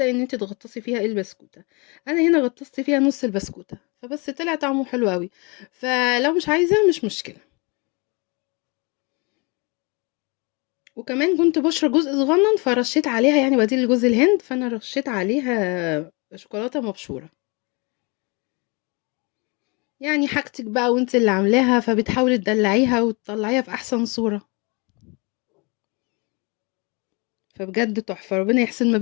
إن أنتِ تغطّسي فيها البسكوتة. أنا هنا غطّست فيها نُص البسكوتة، فبس طلع طعمه حلو أوي. فلو مش عايزة مش مشكلة. وكمان كنت باشرى جزء صغنّن فرشّيت عليها يعني بديل لجوز الهند، فأنا رشّيت عليها شوكولاتة مبشورة. يعني حاجتِك بقى وأنتِ اللي عاملاها، فبتحاولي تدلّعيها وتطلّعيها في أحسن صورة. فبجد تحفة، ربنا يحسن ما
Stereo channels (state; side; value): quieter; right; 29.7 dB